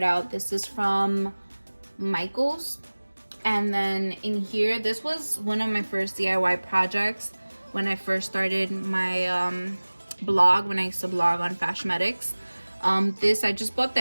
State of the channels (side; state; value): both; inverted; correlation -1.00